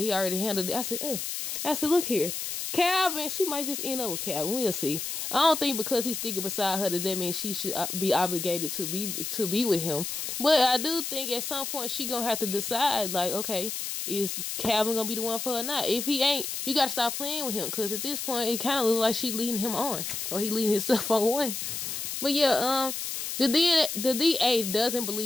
already handled it. I said, look here, Calvin, she might just end up with Calvin. We'll see. I don't think because he's sticking beside her that means she should be obligated to be with him. But I do think at some point she gonna have to decide, like, okay, is Calvin gonna be the one for her or not? If he ain't, you gotta stop playing with him, because at this point it kind of looks like she leading him on, or he leading himself on one. But yeah, the DA doesn't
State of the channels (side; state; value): left; noise; hiss, 4 dB below the sound